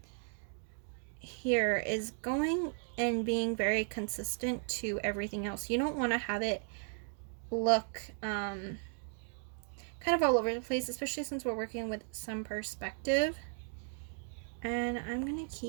here is going and being very consistent to everything else. You don't want to have it look kind of all over the place, especially since we're working with some perspective. And I'm going to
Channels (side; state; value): left; silent; 54 dB below the other